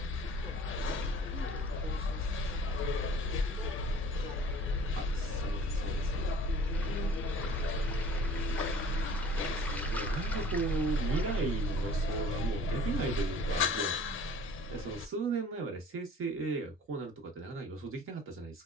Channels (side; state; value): both; normal; correlation 0.48